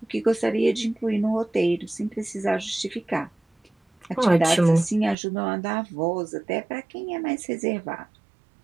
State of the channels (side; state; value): left; drops out; at 5.2 s